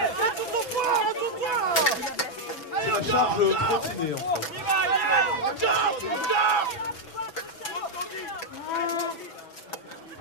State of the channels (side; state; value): right; late; 6.0 ms